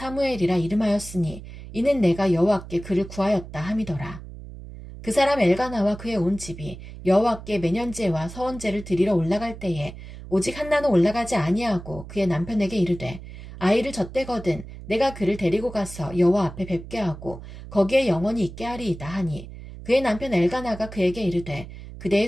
이름하였으니 이는 내가 여호와께 그를 구하였다 함이더라. 그 사람 엘가나와 그의 온 집이 여호와께 매년제와 서원제를 드리러 올라갈 때에 오직 한나는 올라가지 아니하고 그의 남편에게 이르되 아이를 젖대거든 내가 그를 데리고 가서 여호와 앞에 뵙게 하고 거기에 영원히 있게 하리이다 하니 그의 남편 엘가나가 그에게 이르되 그대의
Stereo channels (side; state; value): right; noise; hum, 13 dB below the sound